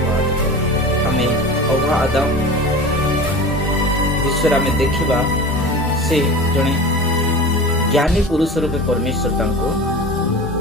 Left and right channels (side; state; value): both; normal; correlation 0.34